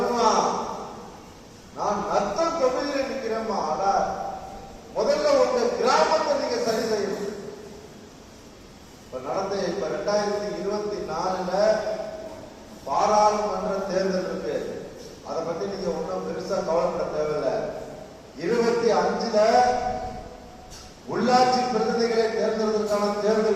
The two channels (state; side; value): identical; both; correlation 1.00